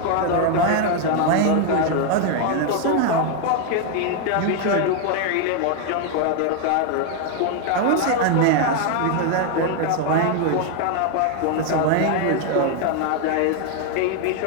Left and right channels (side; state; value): both; different; correlation 0.00